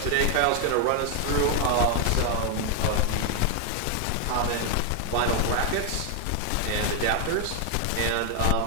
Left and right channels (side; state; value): both; different; correlation 0.00